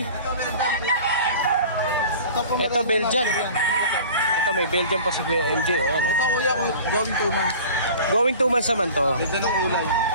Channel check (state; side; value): inverted; both; correlation -0.41